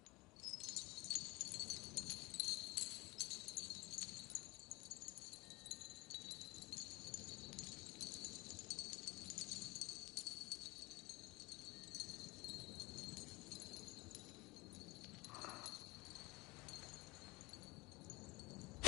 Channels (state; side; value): quieter; right; 23.2 dB